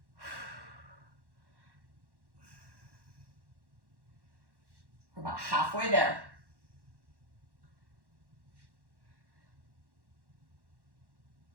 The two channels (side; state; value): left; late; 1.1 ms